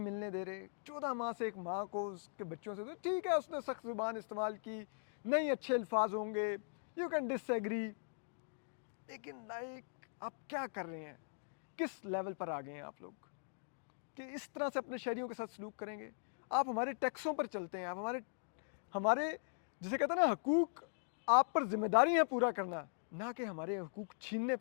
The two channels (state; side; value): silent; right; digital silence